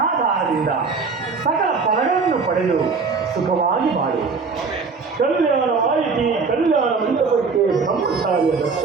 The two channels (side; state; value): left; quieter; 4.7 dB